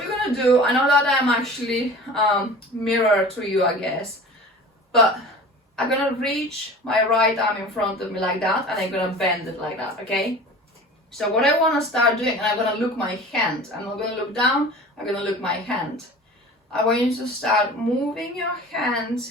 gonna do, I know that I'm actually mirror to you, I guess, but I'm gonna reach my right arm in front of me like that, and I'm gonna bend it like that, okay? So what I wanna start doing, and I'm gonna look my hand. I'm not gonna look down, I'm gonna look my hand. I want you to start moving your hand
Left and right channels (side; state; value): both; normal; correlation 0.40